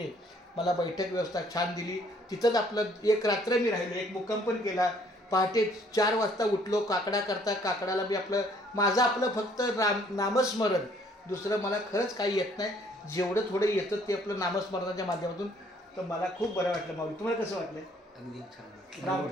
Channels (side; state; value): both; normal; correlation 0.62